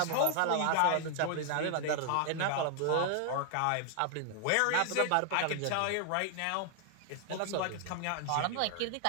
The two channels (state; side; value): different; both; correlation 0.00